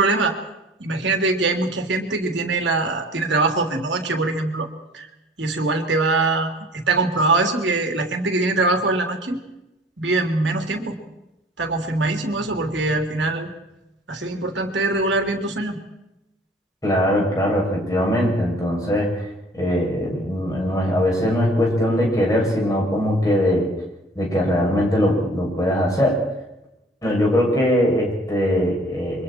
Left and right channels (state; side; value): normal; both; correlation 0.51